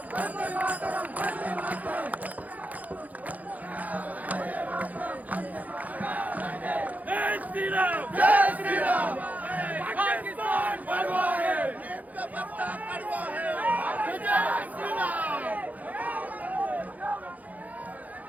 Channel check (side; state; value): left; late; 0.078 ms